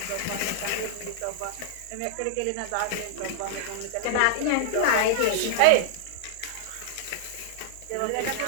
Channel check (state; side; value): different; both; correlation -0.01